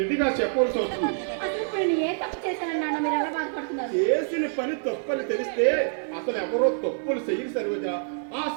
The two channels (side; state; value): left; silent; 61 dB below the other